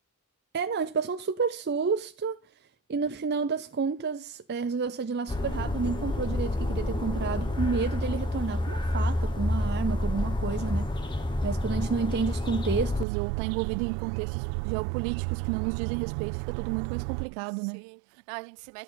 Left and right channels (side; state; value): left; drops out; at 13.1 s